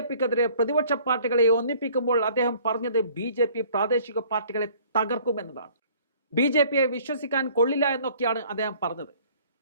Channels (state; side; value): inverted; both; correlation -0.55